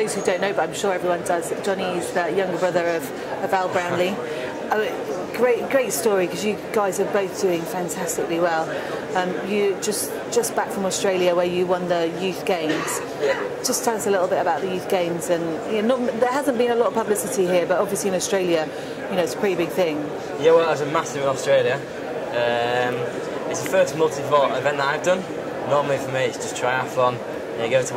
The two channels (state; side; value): identical; both; correlation 1.00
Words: who don't know, but I'm sure everyone does, Johnny is the younger brother of Al Brownlee. Great story, because you guys are both doing fantastically well. You just back from Australia where you won the youth games. Just tell us a little bit about the youth games. And there hasn't been a lot of publicity here, but obviously in Australia, it's a pretty big thing. Yeah, well, it was a massive in Australia. It's the first multi-sport event that I've done. Normally for me it's just triathlon. You go to